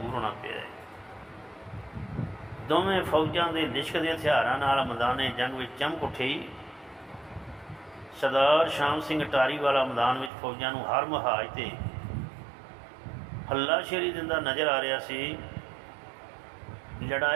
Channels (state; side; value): drops out; left; at 10.3 s